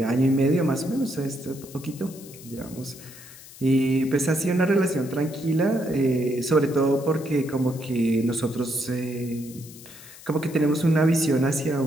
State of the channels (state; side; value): noise; left; hiss, 18 dB below the sound